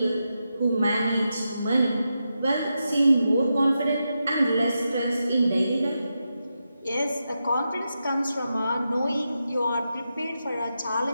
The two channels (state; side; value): inverted; both; correlation -0.88